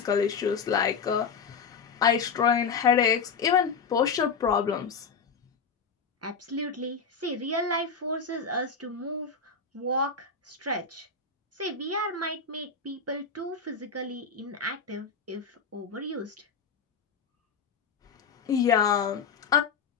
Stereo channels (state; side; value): quieter; right; 5.6 dB